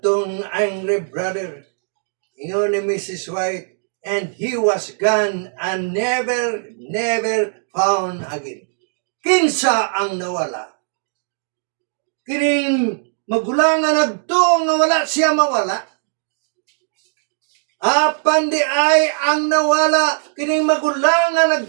angry brother. Ingon ni Mrs. White, and he was gone and never found again. Kinsa ang nawala? Kining magulang nga nagtuong nga wala siya mawala. Apan di ay ang nawala, kining magulang nga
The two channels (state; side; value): silent; left; digital silence